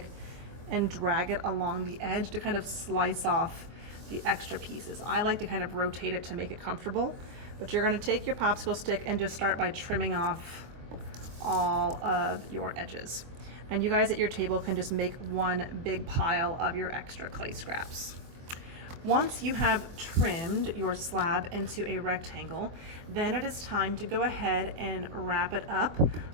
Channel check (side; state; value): left; late; 24 ms